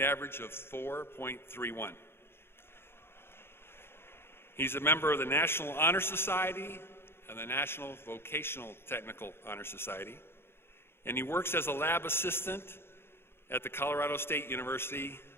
average of 4.31. He's a member of the National Honor Society and the National Vocational Technical Honor Society, and he works as a lab assistant at the Colorado State University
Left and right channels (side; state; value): right; late; 0.11 ms